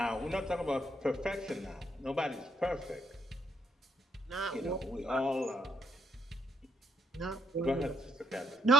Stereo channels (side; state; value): both; normal; correlation 0.74